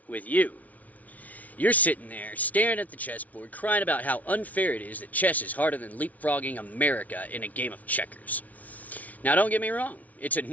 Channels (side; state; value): right; late; 0.072 ms